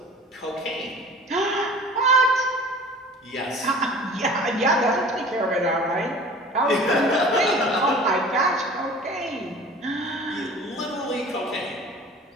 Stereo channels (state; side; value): normal; both; correlation 0.44